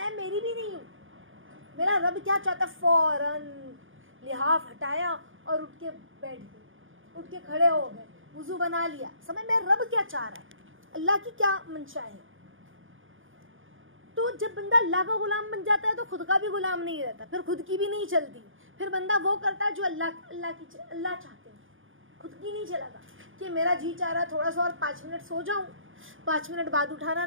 میری بھی نہیں ہوں۔ میرا رب کیا چاہتا ہے؟ فوراً لحاف ہٹایا اور اٹھ کے بیٹھ گئے، اٹھ کے کھڑے ہو گئے، وضو بنا لیا, سمجھ میں رب کیا چاہ رہا ہے, اللہ کی کیا منشا ہے. تو جب بندہ اللہ کا غلام بن جاتا ہے تو خود کا بھی غلام نہیں رہتا, پھر خود کی بھی نہیں چلتی, پھر بندہ وہ کرتا ہے جو اللہ چاہتے ہیں, خود کی نہیں چلاتا کہ میرا جی چاہ رہا تھوڑا سا اور 5 منٹ سو جاؤں, 5 منٹ بعد اٹھانا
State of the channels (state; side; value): late; left; 0.58 ms